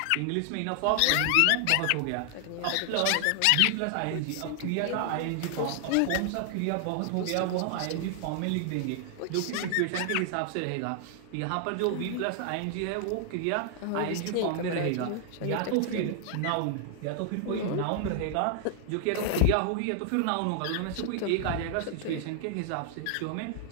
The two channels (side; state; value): both; different; correlation 0.00